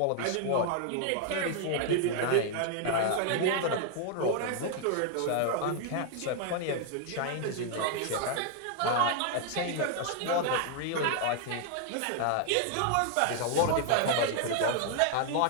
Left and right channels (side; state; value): both; different; correlation 0.00